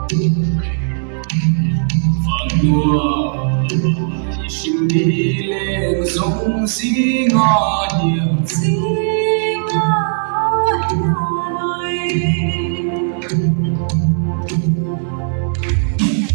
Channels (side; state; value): left; silent; digital silence